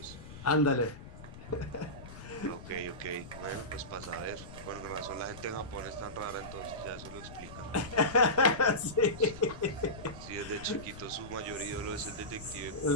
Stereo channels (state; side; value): noise; left; rumble, 14 dB below the sound